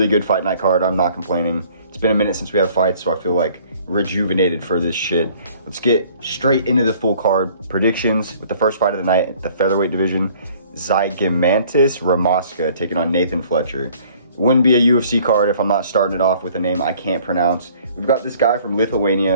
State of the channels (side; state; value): both; inverted; correlation -0.56